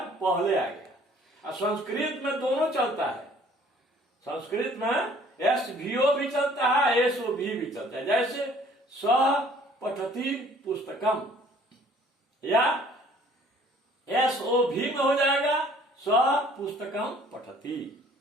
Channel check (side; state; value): both; normal; correlation 0.56